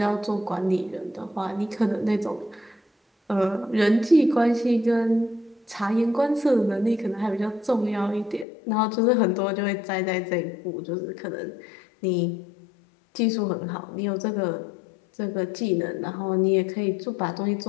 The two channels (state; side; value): drops out; right; at 8.5 s